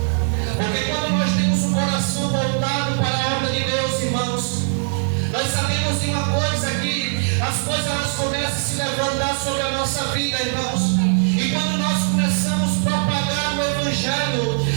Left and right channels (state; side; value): silent; left; 65 dB below the other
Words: Porque quando nós temos o coração voltado para a obra de Deus, irmãos, nós sabemos de uma coisa, que as coisas elas começam a se levantar sobre a nossa vida, irmãos. E quando nós começamos a propagar o Evangelho